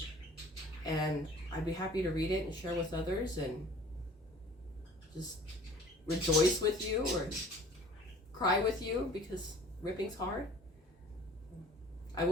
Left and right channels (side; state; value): both; normal; correlation 0.50